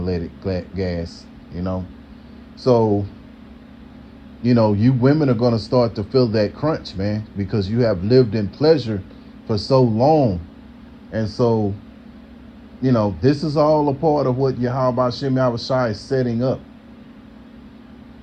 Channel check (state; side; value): identical; both; correlation 1.00